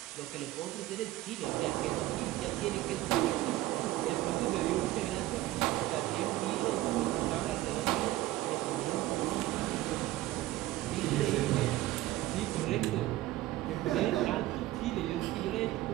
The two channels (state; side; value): quieter; left; 16.1 dB